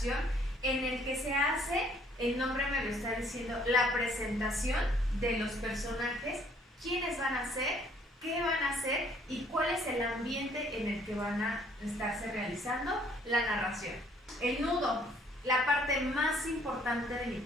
en el que se hace, el nombre me lo está diciendo, la presentación de los personajes, quiénes van a ser, qué van a hacer y cuál es el ambiente en el que van a estarse realizando la narración. El nudo, la parte más importante de mi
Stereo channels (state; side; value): normal; both; correlation 0.62